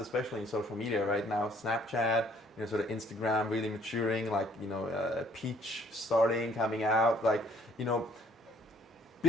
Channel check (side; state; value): both; normal; correlation 0.61